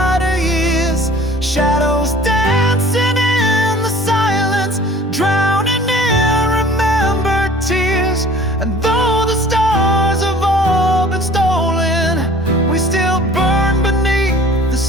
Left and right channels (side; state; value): both; normal; correlation 0.48